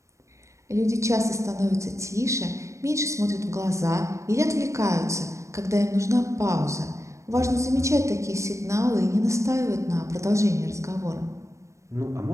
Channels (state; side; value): late; left; 0.15 ms